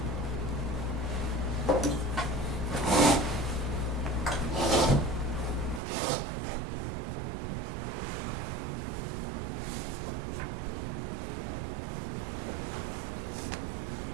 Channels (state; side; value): drops out; left; at 5.8 s